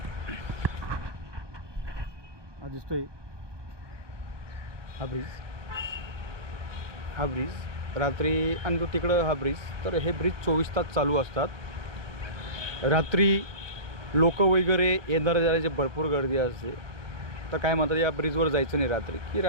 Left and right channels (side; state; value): left; late; 1.2 ms